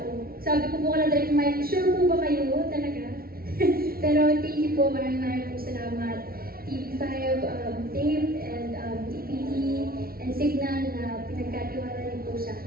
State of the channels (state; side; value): late; left; 0.43 ms